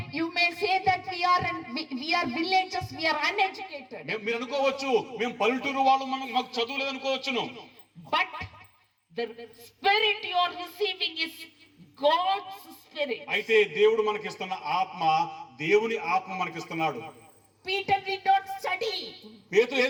You may say that we are villagers, we are uneducated. మీరు అనుకోవచ్చు మేము పల్లెటూరు వాళ్ళు, మాకు చదువు లేదు అనుకోవచ్చును. But the spirit you are receiving is God's spirit. అయితే దేవుడు మనకిస్తున్న ఆత్మ దేవుని ఆత్మ మనకిస్తున్నాడు. Peter did not study. పేతురు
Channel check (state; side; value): identical; both; correlation 1.00